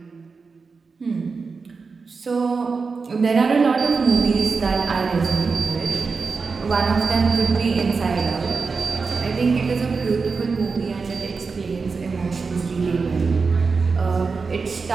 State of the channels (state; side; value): quieter; left; 4.7 dB